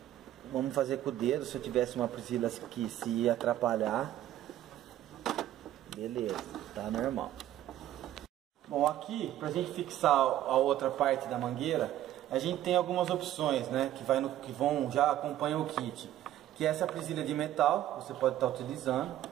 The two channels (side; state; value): left; quieter; 12.8 dB